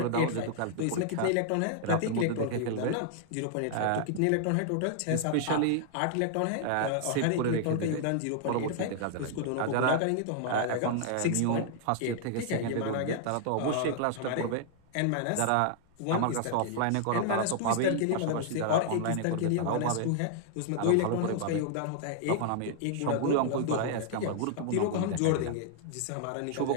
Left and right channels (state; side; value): different; both; correlation -0.01